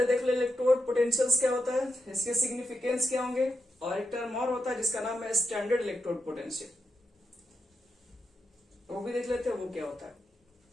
देख ले इलेक्ट्रोड पोटेंशियल्स क्या होता है, इसके सिग्निफिकेंस क्या होंगे, और एक टर्म और होता है जिसका नाम है स्टैंडर्ड इलेक्ट्रोड पोटेंशियल, वो भी देख लेते हैं वो क्या होता है।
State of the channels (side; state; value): both; normal; correlation 0.85